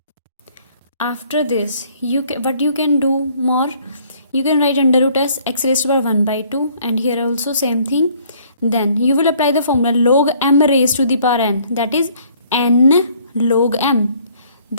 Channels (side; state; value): both; inverted; correlation -0.60